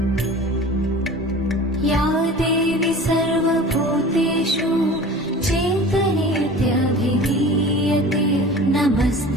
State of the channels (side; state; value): both; normal; correlation 0.40